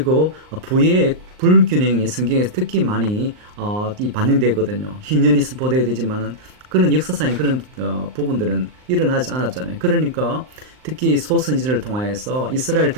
부의 불균형이 성경에서 특히 많이 반영되거든요. 희년이 선포되어야 되지만은 그런 역사상의 그런 부분들은 일어나지 않았잖아요. 그러니까 특히 소선지자를 통하여서 이스라엘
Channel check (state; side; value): late; left; 39 ms